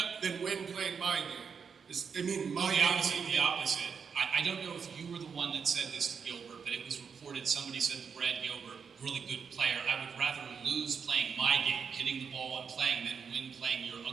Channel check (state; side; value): quieter; left; 6.3 dB